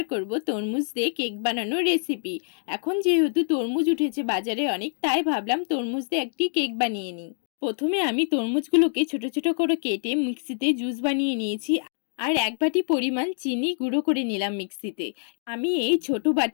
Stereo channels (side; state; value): right; silent; 61 dB below the other